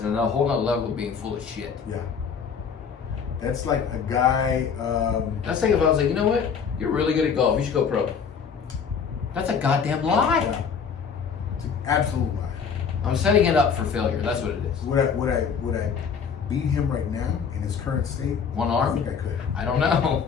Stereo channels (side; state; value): right; quieter; 6.5 dB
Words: a whole other level of being full of shit. Yeah. That's like a guy. That's like if I was like, you know what? You're really good at golf. You should go pro. That's a goddamn lie. Yeah. It's an absolute lie. I'm setting it up for failure. That's what it is. Would I beat him right now in his current state? One arm? I think I could. I don't